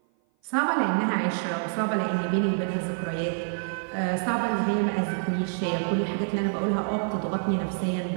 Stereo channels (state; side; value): silent; left; 56 dB below the other